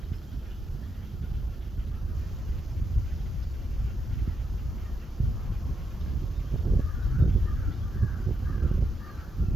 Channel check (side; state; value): both; normal; correlation 0.81